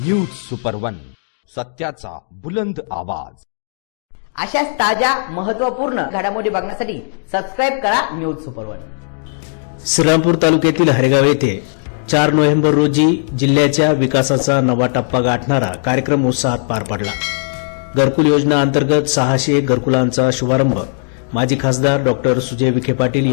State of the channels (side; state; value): right; silent; digital silence